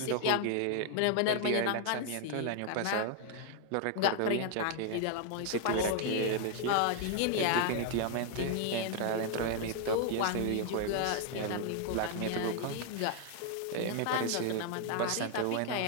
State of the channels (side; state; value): both; different; correlation 0.00